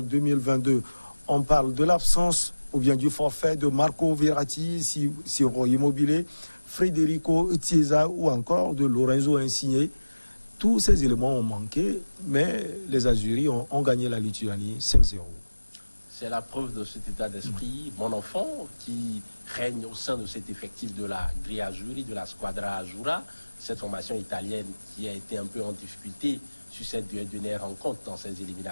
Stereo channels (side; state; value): both; inverted; correlation -1.00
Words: 2022. On parle de l'absence ou bien du forfait de Marco Verratti, Ciro Immobile, Federico Chiesa ou encore de Lorenzo Insigne. Tous ces éléments ont manqué, mais les Azuris ont gagné la Lituanie 5-0. C'est la preuve de cet état d'esprit, mon enfant, qui règne au sein de cet effectif de la Grille Azzurri, de la Squadra Azzurra, cette formation italienne qui a été un peu en difficulté sur cette dernière rencontre dans ces